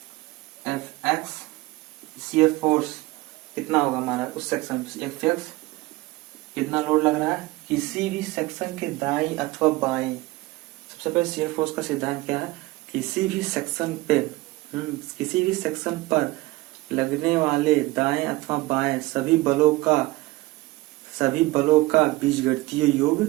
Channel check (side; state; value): left; quieter; 20.2 dB